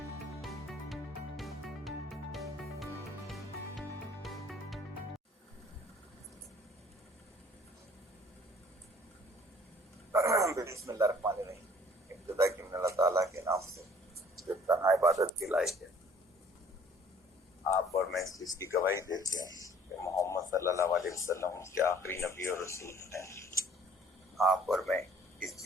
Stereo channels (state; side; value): normal; both; correlation 0.55